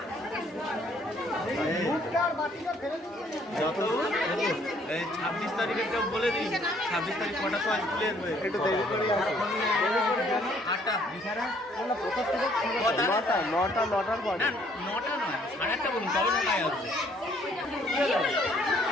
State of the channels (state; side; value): normal; both; correlation 0.63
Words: যত 26 তারিখে কেউ বলে দিই, 26 তারিখ কটা সময় স্কুলে একটু দেরি করে নটার পর, নটা নয় 8:30 বলুন, তবে 9টায় আসবে।